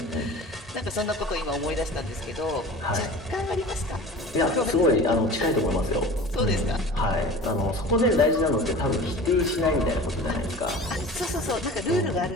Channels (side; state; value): both; normal; correlation 0.38